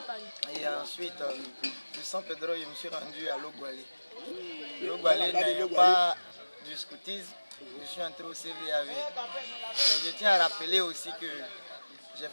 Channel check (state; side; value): inverted; both; correlation -1.00